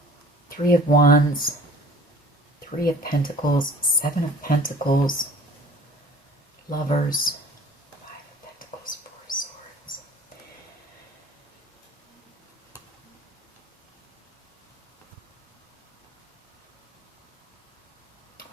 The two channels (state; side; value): normal; both; correlation 0.48